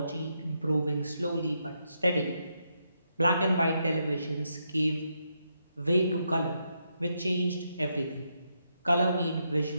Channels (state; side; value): inverted; both; correlation -0.81